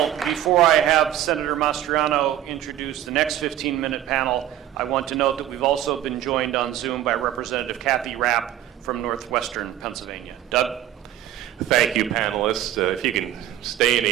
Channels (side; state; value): left; quieter; 12.1 dB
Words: before I have Senator Mastriano introduce the next 15-minute panel, I want to note that we've also been joined on Zoom by Representative Kathy Rapp from Northwestern Pennsylvania. Doug? Thank you, panelists. If you can stay in